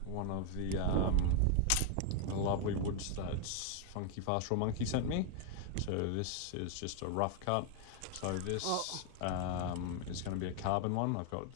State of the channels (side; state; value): both; different; correlation 0.00